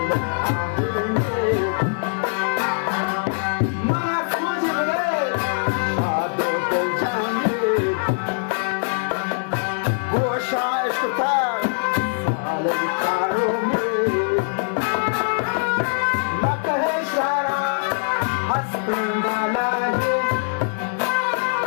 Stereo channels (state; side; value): silent; right; digital silence